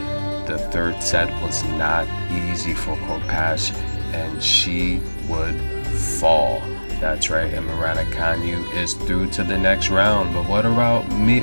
The third set was not easy for Korpatch, and she would fall. That's right, Emma Raducanu is through to the next round. But what about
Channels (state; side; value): inverted; both; correlation -1.00